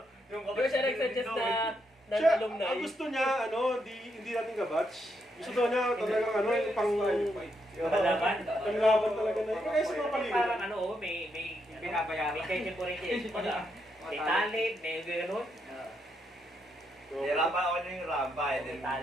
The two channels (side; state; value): both; normal; correlation 0.79